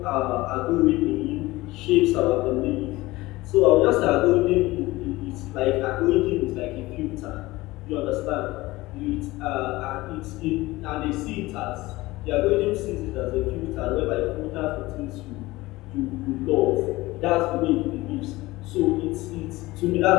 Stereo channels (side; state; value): right; quieter; 19.6 dB